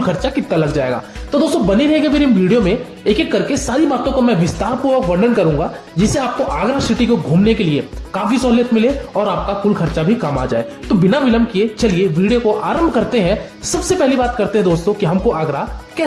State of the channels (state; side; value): identical; both; correlation 1.00